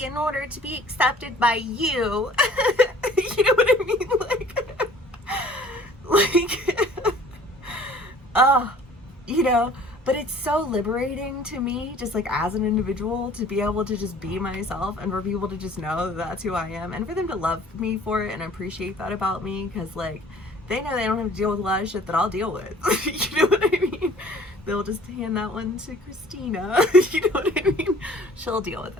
in order to be accepted by you. You know what I mean? You know, but it's so liberating to me, just like as an individual, to be able to just be myself, and for people to just know that that's who I am, and for them to love me for it and appreciate that about me, because like they know they don't have to deal with a lot of shit that I'll deal with. You know what I mean? They'll just hand that one to Christina. You know what I mean? She'll deal with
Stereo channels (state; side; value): normal; both; correlation 0.52